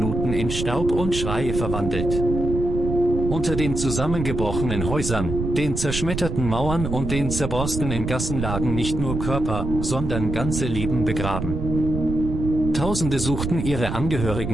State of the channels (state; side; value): noise; right; rumble, 4 dB below the sound